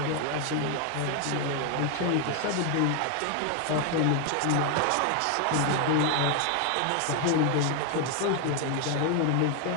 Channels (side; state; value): both; different; correlation 0.01